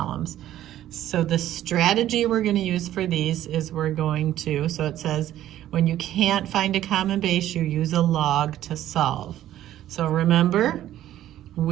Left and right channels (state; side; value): quieter; left; 12.8 dB